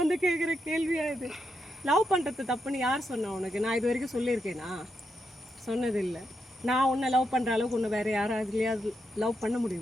வந்து கேட்குற கேள்வியா இது? லவ் பண்ணுறது தப்புன்னு யார் சொன்னா உனக்கு? நான் இது வரைக்கும் சொல்லியிருக்கேனா? சொன்னதில்லை. நான் உன்னை லவ் பண்ணுற அளவுக்கு உன்னை வேறு யாராவதுலையாவது லவ் பண்ண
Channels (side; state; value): both; normal; correlation 0.83